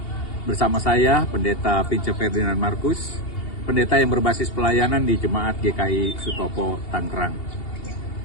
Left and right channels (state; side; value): late; right; 2.8 ms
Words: bersama saya, Pendeta Vince Ferdinand Markus, pendeta yang berbasis pelayanan di Jemaat GKI Sutopo, Tangerang.